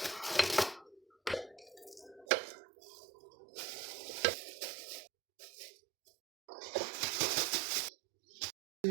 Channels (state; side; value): drops out; left; at 2.2 s